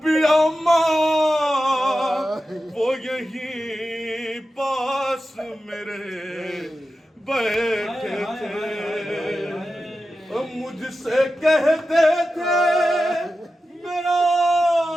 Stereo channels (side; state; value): both; normal; correlation 0.92